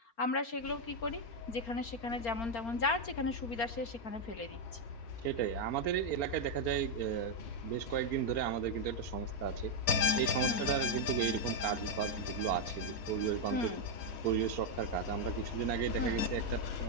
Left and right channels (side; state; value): right; late; 4.4 ms